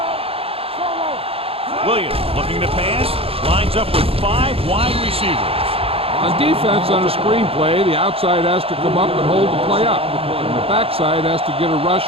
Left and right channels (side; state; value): left; late; 0.28 ms